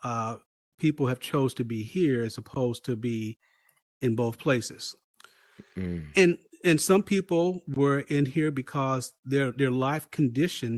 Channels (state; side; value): identical; both; correlation 1.00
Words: uh, people have chose to be here as opposed to be in both places. Mm, And and some people were in here because their life